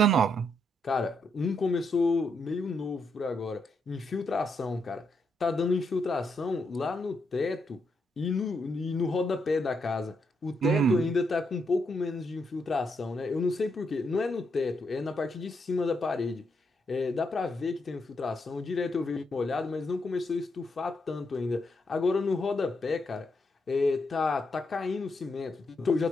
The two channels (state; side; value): normal; both; correlation 0.80